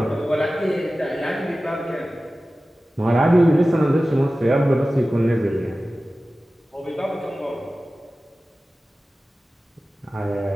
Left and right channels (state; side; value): normal; both; correlation 0.96